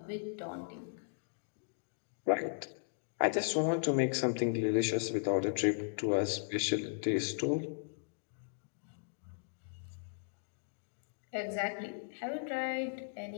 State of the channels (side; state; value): right; silent; digital silence